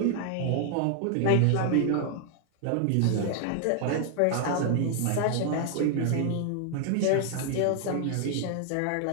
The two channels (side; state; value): both; different; correlation 0.00